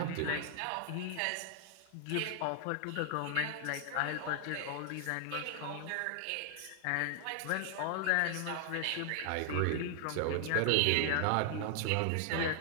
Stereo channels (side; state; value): both; different; correlation 0.00